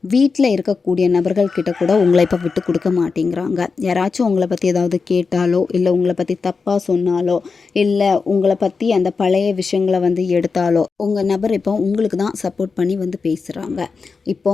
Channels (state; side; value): quieter; right; 4.8 dB